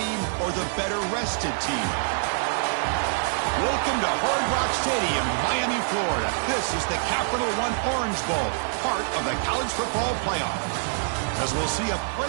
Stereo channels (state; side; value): silent; left; 59 dB below the other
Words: or the better-rested team? Welcome to Hard Rock Stadium, Miami, Florida. This is the Capital One Orange Bowl, part of the college football playoff. As we'll see a